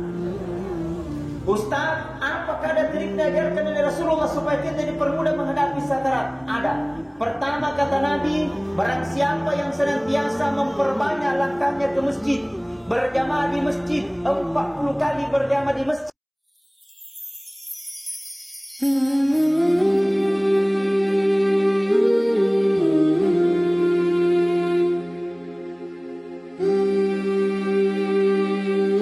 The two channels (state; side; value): identical; both; correlation 1.00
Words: Ustaz, apakah ada trik diajarkan oleh Rasulullah supaya kita dipermudah menghadapi sakarat? Ada. Pertama kata Nabi, barang siapa yang senantiasa memperbanyak langkahnya ke masjid, berjamaah di masjid, 40 kali berjamaah di masjid.